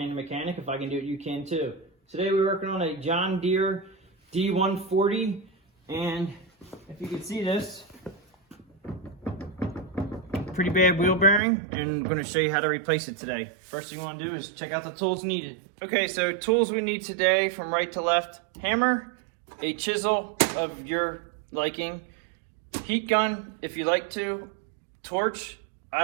mechanic. If I can do it, you can too. Today we're working on a John Deere D140, and if you can see this, pretty bad wheel bearing, and I'm going to show you how to replace it today. First thing you want to do is check out the tools needed. Okay, so tools we need today from right to left: hammer, a chisel of your liking, heat gun if you like to, torch. I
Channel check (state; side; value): drops out; left; at 11.4 s